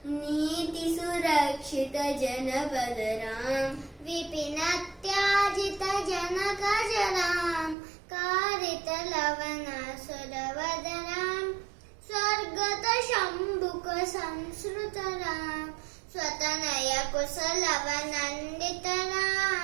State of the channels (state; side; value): drops out; left; at 7.8 s